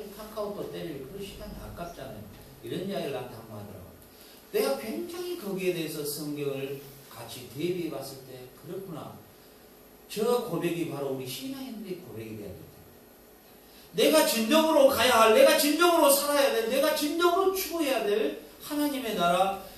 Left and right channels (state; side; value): identical; both; correlation 1.00